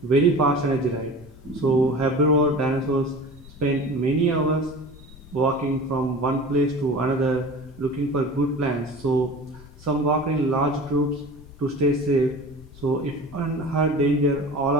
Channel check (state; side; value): noise; left; rumble, 20 dB below the sound